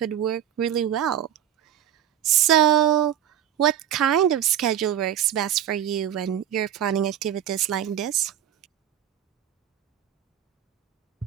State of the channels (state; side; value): quieter; left; 10.3 dB